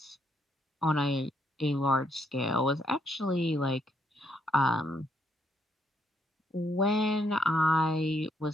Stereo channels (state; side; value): normal; both; correlation 0.74